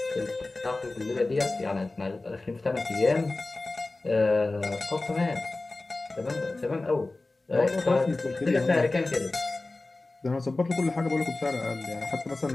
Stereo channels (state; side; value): quieter; right; 3.1 dB